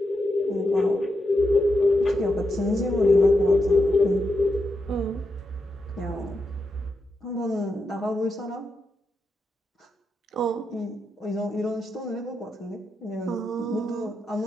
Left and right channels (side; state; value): both; normal; correlation 0.85